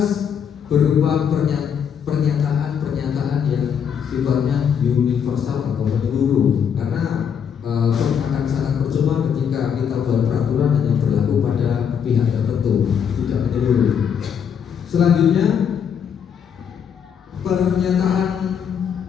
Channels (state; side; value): quieter; right; 7.7 dB